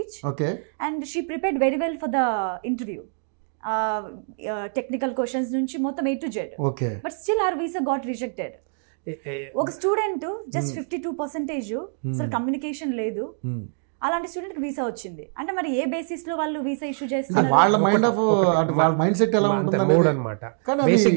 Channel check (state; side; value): silent; left; digital silence